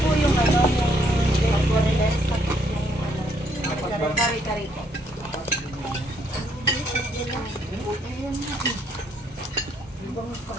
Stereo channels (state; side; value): normal; both; correlation 0.70